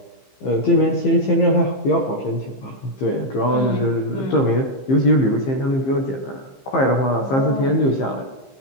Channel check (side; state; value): right; late; 15 ms